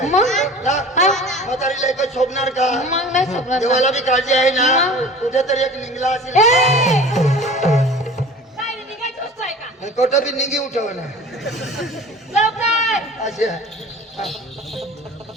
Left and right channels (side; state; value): both; normal; correlation 0.41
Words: आहे मग ना? हा. म्हातारीला एकच शोभणार का? मग नाही सोडणार ना. देवाला बी काळजी आहे ना. मग. कुठेतरी एक निघला असेल. ए! काय रे, निघायची वस्तू आहे का? कोठं बी निघी उठव ना लवकर. असे